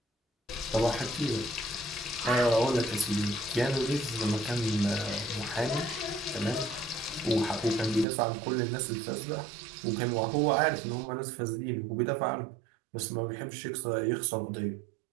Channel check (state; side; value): drops out; left; at 8.1 s